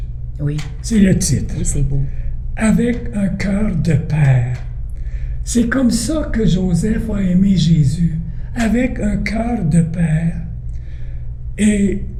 Oui. C'est le titre. Oui, c'est beau. Avec un cœur de père. C'est comme ça que Joseph a aimé Jésus, avec un cœur de père. Et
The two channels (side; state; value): both; identical; correlation 1.00